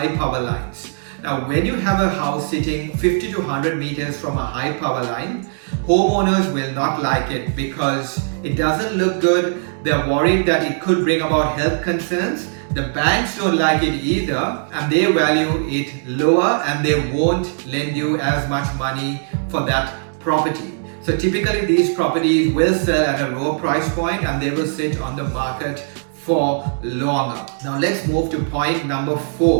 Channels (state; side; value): silent; left; digital silence